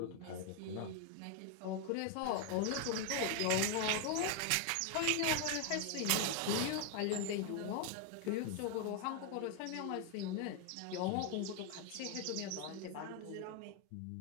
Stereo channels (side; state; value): both; different; correlation 0.01